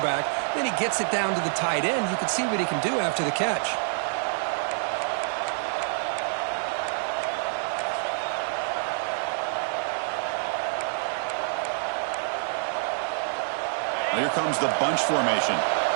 Then he gets it down to the tight end. You can see what he can do after the catch. Now here comes the bunch formation.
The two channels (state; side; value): silent; left; 56 dB below the other